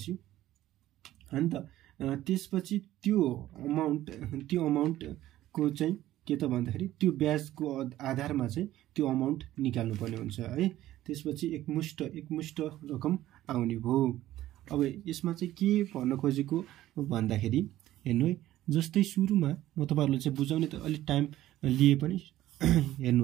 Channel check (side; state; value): left; quieter; 14.4 dB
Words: हैन त त्यसपछि त्यो अमाउन्ट को चाहिँ के त भन्दाखेरि त्यो ब्याजको आधारमा चाहिँ त्यो अमाउन्ट निकाल्नु पर्ने हुन्छ है। त्यसपछि एकमुष्ट रकम आउने भयो। अब यसमा चाहिँ के भन्न खोजेको भन्दाखेरि हेर्नु है, जस्तै सुरुमा म तपाईहरुले चाहिँ बुझाउने त अलि टाइम लिए पनि